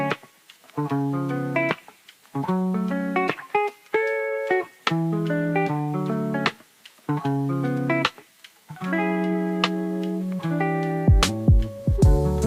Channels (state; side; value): identical; both; correlation 1.00